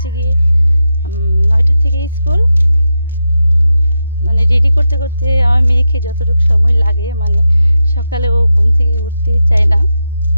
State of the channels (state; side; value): inverted; both; correlation -0.88